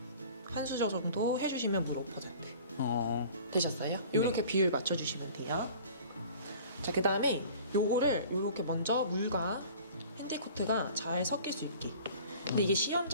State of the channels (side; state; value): both; inverted; correlation -0.45